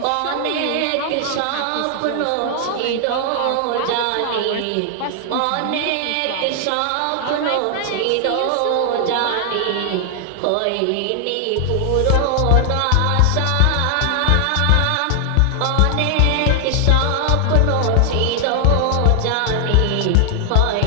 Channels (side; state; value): both; different; correlation 0.00